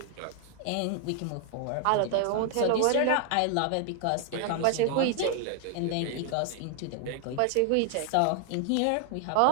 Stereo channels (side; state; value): both; different; correlation 0.00